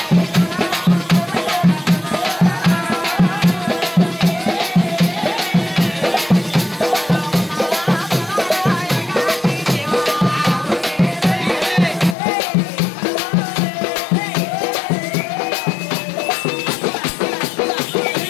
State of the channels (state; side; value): drops out; right; at 12.2 s